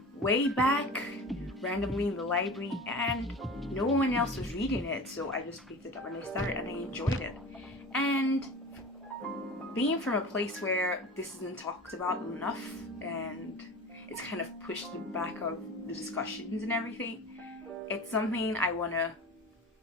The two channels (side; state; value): both; normal; correlation 0.35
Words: way back randomly in the library, and no one else was reading it, so I just picked it up and I started, and I enjoyed it. And being from a place where this isn't talked about enough and it's kind of pushed to the back of the discussions and everything, it's something I want to